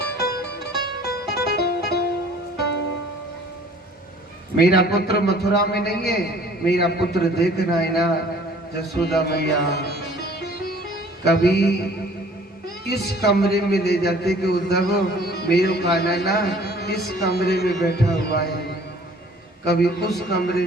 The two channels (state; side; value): normal; both; correlation 0.53